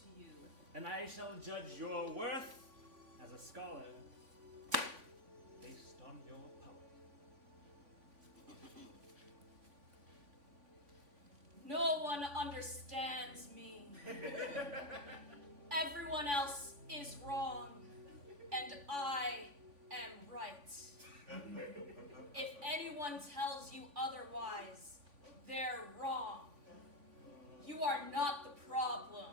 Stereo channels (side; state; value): left; late; 3.5 ms